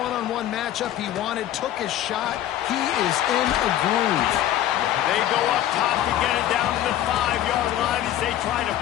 matchup he wanted, took his shot. He is in a groove. They go up top to get it down to the 5-yard line as they try to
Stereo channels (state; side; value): quieter; right; 12.4 dB